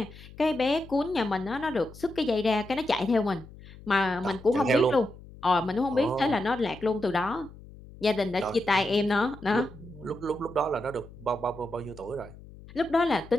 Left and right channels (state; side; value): noise; left; hum, 19 dB below the sound